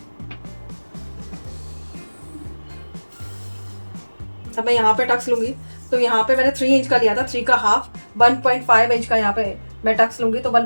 अब मैं यहाँ पे टक्स लूंगी। तो यहाँ पे मैंने 3 इंच का लिया था, 3 का हाफ 1.5 इंच का यहाँ पे मैं टक्स लूंगी। तो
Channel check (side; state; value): both; inverted; correlation -1.00